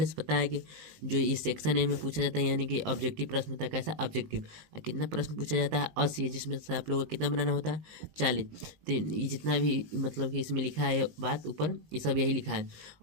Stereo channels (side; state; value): left; late; 19 ms